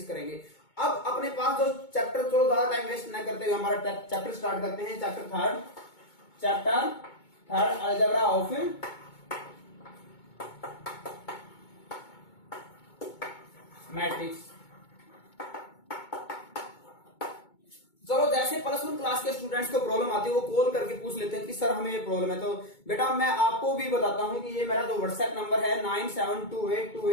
करेंगे। अब अपने पास जो चैप्टर, चलो ज्यादा टाइम वेस्ट न करते हुए हमारा चैप्टर स्टार्ट करते हैं। Chapter third algebra of matrix. चलो, जैसे प्लस वन क्लास के स्टूडेंट्स को प्रॉब्लम आती है वो कॉल करके पूछ लेते हैं कि सर हमें ये प्रॉब्लम है। तो बेटा मैं आपको भी बताता हूं कि ये मेरा जो व्हाट्सएप नंबर है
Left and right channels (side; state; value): right; late; 2.2 ms